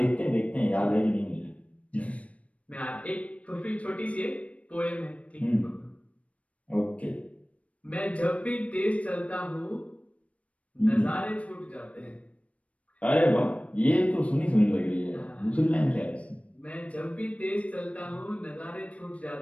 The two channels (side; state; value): right; late; 0.065 ms